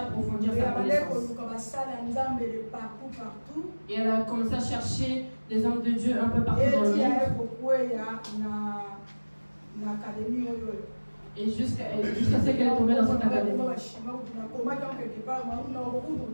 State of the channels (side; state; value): both; inverted; correlation -1.00